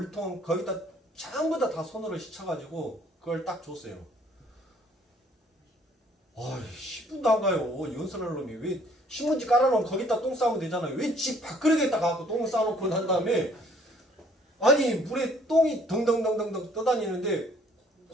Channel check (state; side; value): normal; both; correlation 0.60